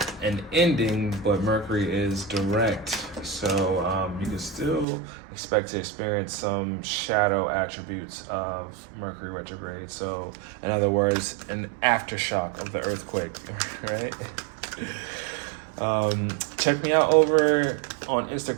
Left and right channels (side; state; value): left; drops out; at 4.9 s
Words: an ending, but Mercury is direct, so you can still expect to experience some shadow attributes of Mercury retrograde. So in other words, an aftershock of the earthquake, right? Check me out over on